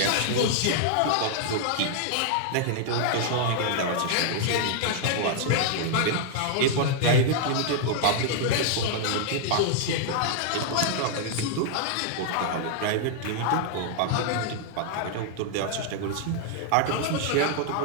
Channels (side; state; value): both; different; correlation -0.01